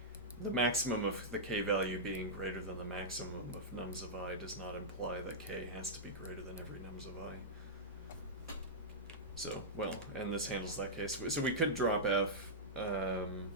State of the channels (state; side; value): normal; both; correlation -0.10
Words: the maximum of the k value being greater than the maximum of nums of I does not imply that k has to be greater than every nums of I. So, well, and this handles that case. So we could drop f.